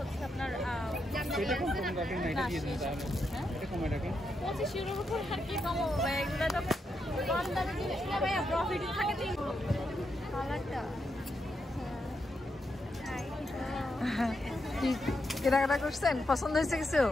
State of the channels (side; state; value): both; normal; correlation 0.83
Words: হচ্ছে আপনার 25 ইউরোর উপর আর কি কমাবো ভাই? এগুলো তো কম দামে জিনিস না ভাইয়া, প্রফিট থাকে। কালারটা কি কেনাকাটা করছেন? পছন্দ হয়েছে কিছু?